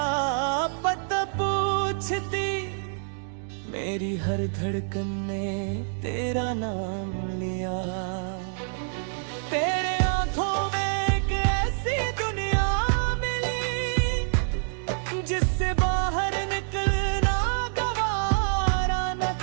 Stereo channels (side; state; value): left; silent; digital silence